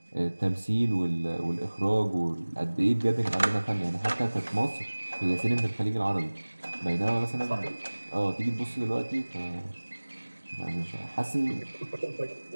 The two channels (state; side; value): inverted; both; correlation -1.00